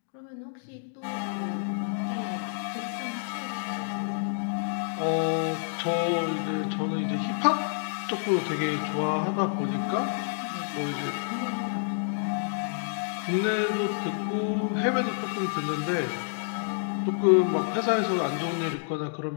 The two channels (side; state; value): right; silent; digital silence